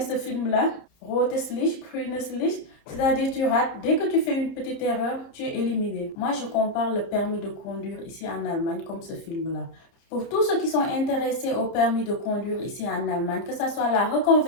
ce film-là? Rotes Licht, grünes Licht. C'est-à-dire tu rates. Dès que tu fais une petite erreur, tu es éliminé. Moi, je compare le permis de conduire ici en Allemagne comme ce film-là. Pour tous ceux qui sont intéressés au permis de conduire ici en Allemagne, que ce soit la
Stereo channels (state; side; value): late; right; 30 ms